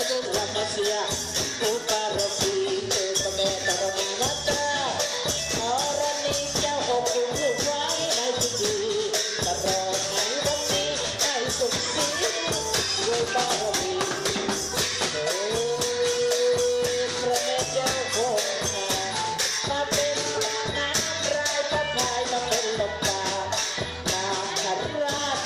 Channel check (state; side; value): identical; both; correlation 1.00